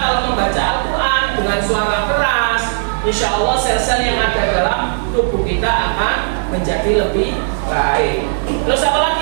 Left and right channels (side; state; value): left; silent; digital silence